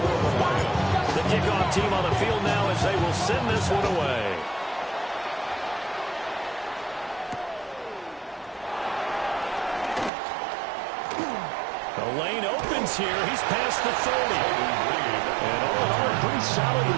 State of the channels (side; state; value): left; drops out; at 10.1 s